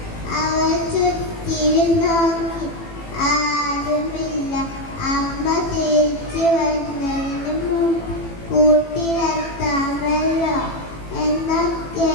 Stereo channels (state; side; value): late; right; 18 ms